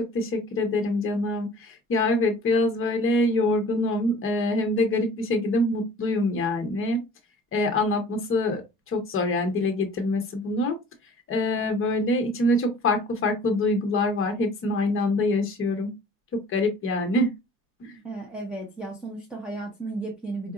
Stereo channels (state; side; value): normal; both; correlation 0.48